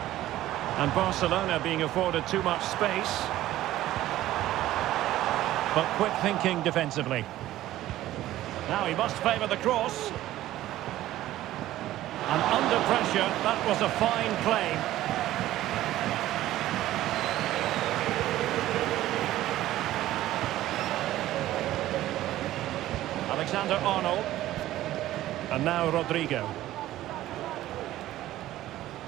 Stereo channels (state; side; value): quieter; left; 14.6 dB